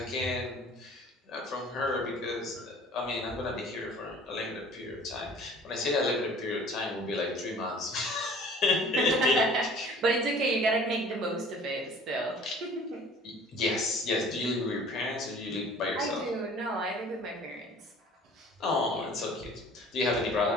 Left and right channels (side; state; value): both; normal; correlation 0.49